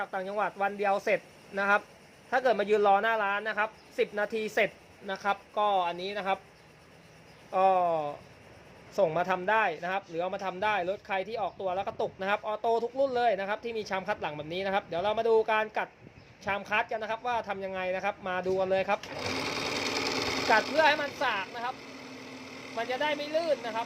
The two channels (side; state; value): both; identical; correlation 1.00